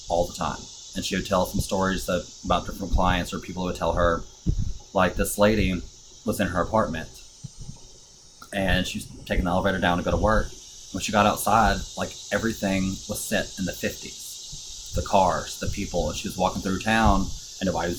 all the time. And she would tell some stories about different clients, or people would tell her, like this lady was in her apartment and she was taking the elevator down to go to work. When she got outside, like everything was set in the 50s. The cars, the people, and she was walking through town and nobody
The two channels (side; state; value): both; identical; correlation 1.00